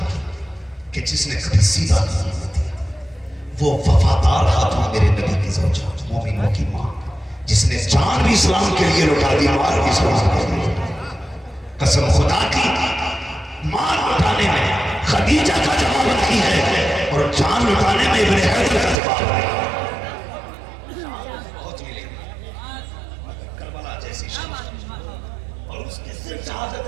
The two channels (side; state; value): left; drops out; at 18.9 s